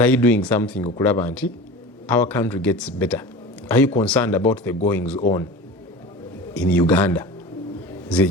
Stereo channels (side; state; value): both; normal; correlation 0.34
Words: are you doing something okulaba nti our country gets better are you concerned about the goings on in Uganda